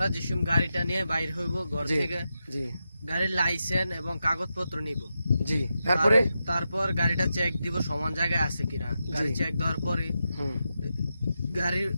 যেসব গাড়িটা নিয়ে বাইর হইব ঘর থেকে, জি গাড়ির লাইসেন্স এবং কাগজপত্র নিব। জি, তারপরে তারপর গাড়িটা চেক দিব সমান জায়গায় আছে কিনা। গাড়ি চেক দেওয়ার পরে গাড়ির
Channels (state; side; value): inverted; both; correlation -0.88